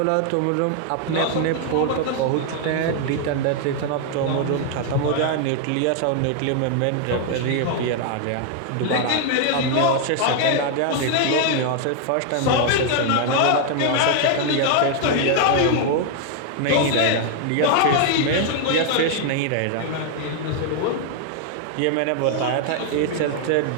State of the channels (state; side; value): different; both; correlation 0.00